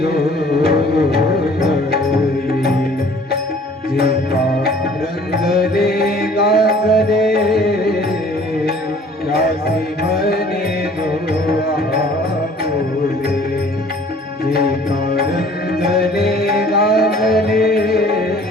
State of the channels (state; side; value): normal; both; correlation 0.53